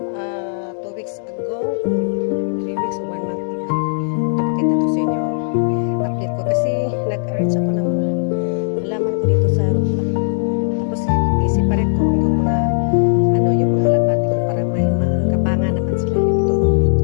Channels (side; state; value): right; silent; 67 dB below the other